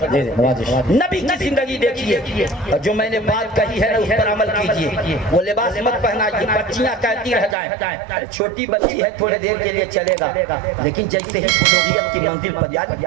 नबी की जिंदगी देखिए, और जो मैंने बात कही है ना उस पर अमल कीजिए। वो लिबास मत पहनाइए, बच्चियां कहती रह जाएं, छोटी बच्ची है थोड़ी देर के लिए चलेगा, लेकिन जैसे ही बुलूगियत की मंजिल पर यानी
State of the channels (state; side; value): drops out; left; at 7.6 s